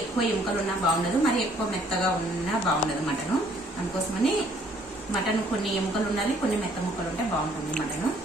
ఎముకలు ఉన్నా బాగుండదు, మరీ ఎక్కువ మెత్తగా ఉన్నా బాగుండదు మటన్. అందుకోసమని మటన్ కొన్ని ఎముకలు ఉండాలి, కొన్ని మెత్త ముక్కలు ఉంటే బాగుంటుంది మటన్.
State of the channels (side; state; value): both; normal; correlation 0.62